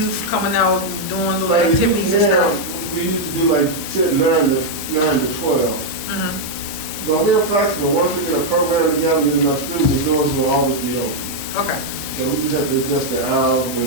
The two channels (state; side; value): normal; both; correlation -0.01